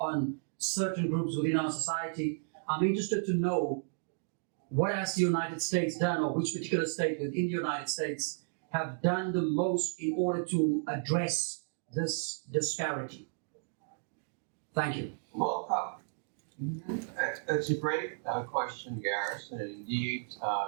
certain groups within our society, I'm interested to know what has the United States done, or which particular state within the United States have done the most in order to address this disparity? Thank you. well, that's a great question, Gareth. And indeed,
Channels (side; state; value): left; silent; digital silence